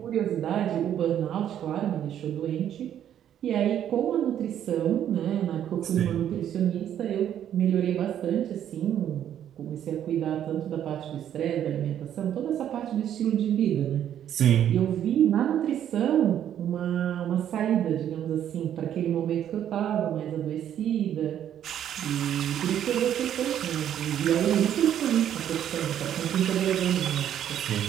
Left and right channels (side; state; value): left; quieter; 10.3 dB